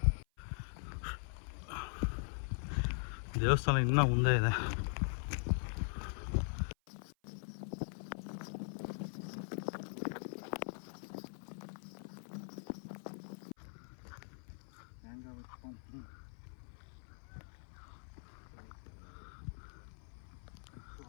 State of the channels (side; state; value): right; silent; 50 dB below the other